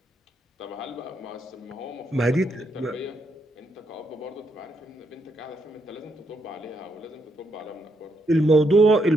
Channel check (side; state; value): both; normal; correlation 0.78